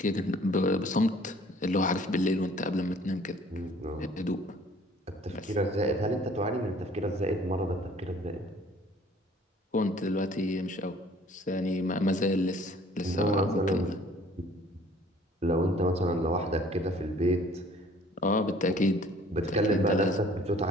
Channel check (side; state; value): both; normal; correlation 0.54